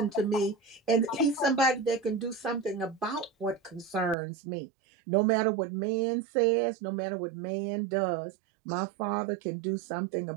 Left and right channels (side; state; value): left; drops out; at 4.2 s